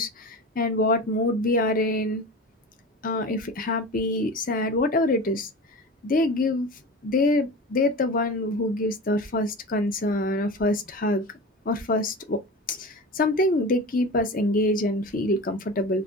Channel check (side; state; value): both; normal; correlation 0.31